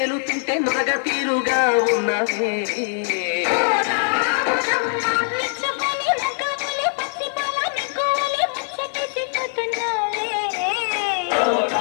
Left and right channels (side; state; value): right; silent; 64 dB below the other